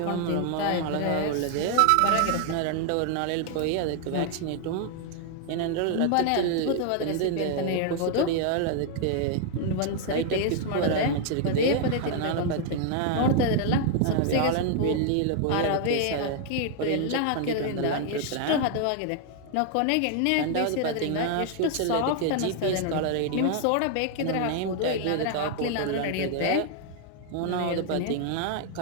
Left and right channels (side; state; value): both; different; correlation 0.00